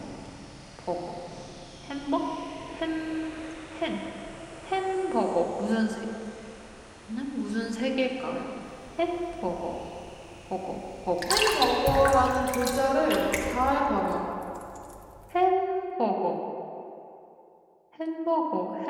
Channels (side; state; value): both; identical; correlation 1.00